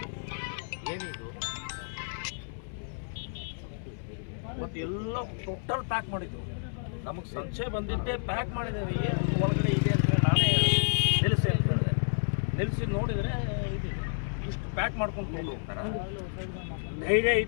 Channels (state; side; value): silent; right; 57 dB below the other